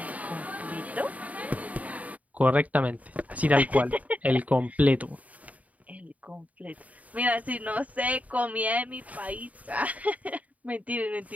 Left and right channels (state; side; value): late; left; 0.071 ms